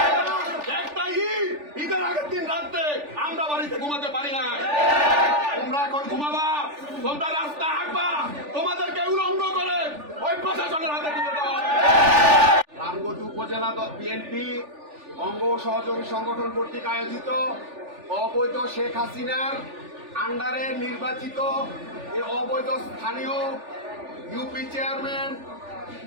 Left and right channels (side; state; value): left; late; 3.4 ms